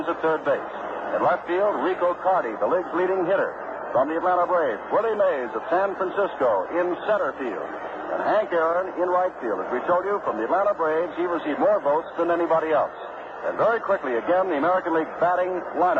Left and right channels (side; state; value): both; identical; correlation 1.00